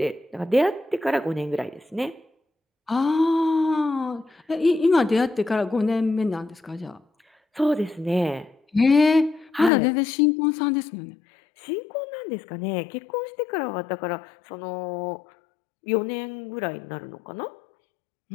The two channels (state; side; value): drops out; right; at 9.7 s